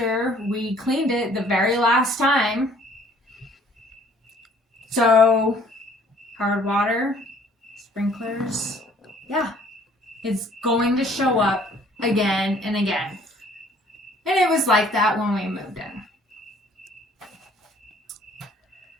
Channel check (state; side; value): normal; both; correlation 0.57